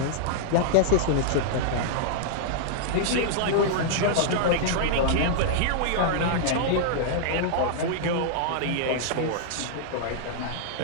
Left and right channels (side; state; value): both; different; correlation -0.01